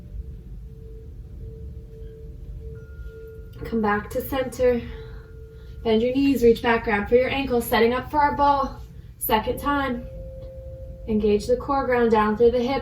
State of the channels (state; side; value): identical; both; correlation 1.00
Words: Come back to center. Bend your knees, reach back, grab for your ankles, setting up for our ball. Second time. Engage the core, ground down through the